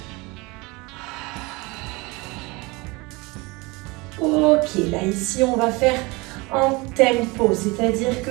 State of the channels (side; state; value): left; quieter; 25.0 dB